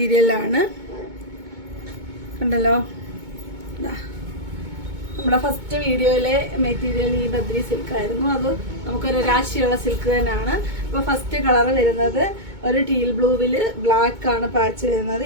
കണ്ടല്ലോ, നമ്മുടെ ഫസ്റ്റ് വീഡിയോയിലെ മെറ്റീരിയൽ ഈ ബദ്രി സിൽക്ക് ആയിരുന്നു. അത് നമുക്കൊരു രാശിയുള്ള സിൽക്ക് തന്നെയാണ്. അപ്പോൾ ഫസ്റ്റ് കളർ വരുന്നത് ഒരു ടീൽ ബ്ലൂവില് ബ്ലാക്ക് ആണ് പാച്ച് വരുന്നത്.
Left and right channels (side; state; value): left; late; 2.2 ms